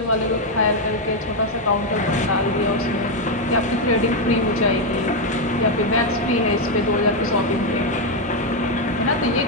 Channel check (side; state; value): both; normal; correlation 0.04